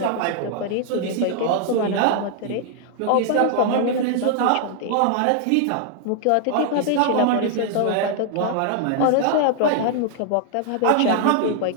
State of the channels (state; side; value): different; both; correlation 0.00